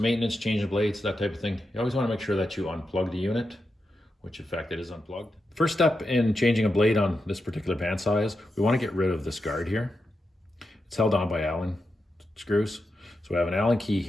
changing blades, that type of thing, you always want to make sure that you unplug the unit, which in fact it is unplugged. First step in changing a blade on this particular bandsaw is we want to get rid of this guard here. It's held on by Allen screws. So we have an Allen key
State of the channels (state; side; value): normal; both; correlation 0.88